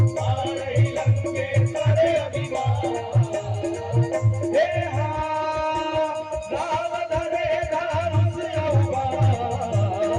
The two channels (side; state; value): both; identical; correlation 1.00